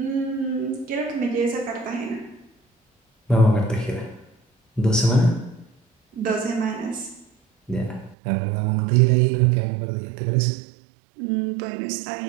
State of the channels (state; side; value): drops out; left; at 8.2 s